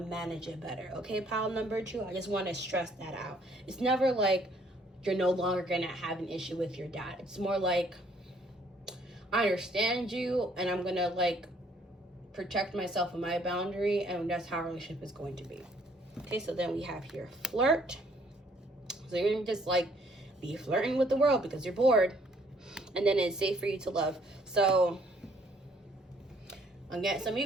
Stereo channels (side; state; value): both; normal; correlation 0.64